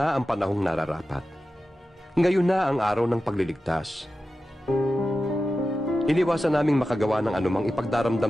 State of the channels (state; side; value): normal; both; correlation 0.93